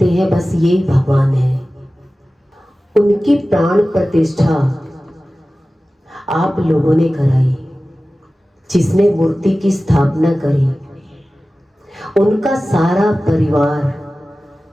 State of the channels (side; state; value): both; normal; correlation 0.96